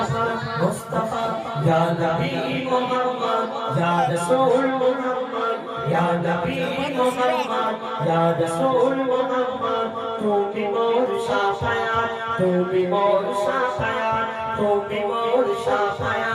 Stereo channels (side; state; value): both; identical; correlation 1.00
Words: মুস্তাফা ইয়া নবী মুহাম্মদ ইয়া রাসূল মুহাম্মদ ইয়া নবী মুহাম্মদ ইয়া রাসূল মুহাম্মদ তুমি মোর শাফায়াত তুমি মোর শাফায়াত তুমি মোর